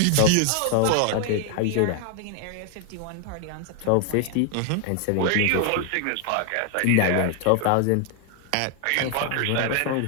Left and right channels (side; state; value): both; different; correlation 0.00